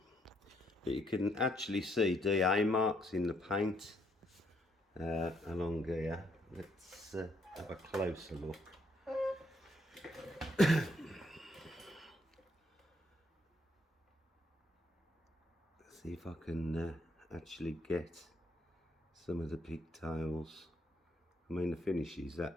But you can actually see DA marks in the paint along here. Let's have a closer look. See if I can actually get some of the pigtails. I mean, the finish is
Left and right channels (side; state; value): both; normal; correlation 0.71